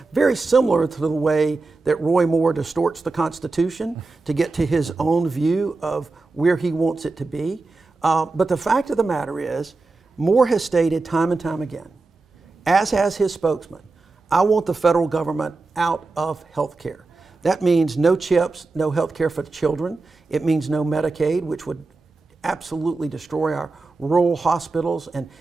Very similar to the way that Roy Moore distorts the Constitution to get to his own view of where he wants it to be. But the fact of the matter is, Moore has stated time and time again, as has his spokesman, I want the federal government out of health care. That means no CHIPs, no health care for the children. It means no Medicaid, which would absolutely destroy our rural hospitals, and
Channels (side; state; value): left; quieter; 3.6 dB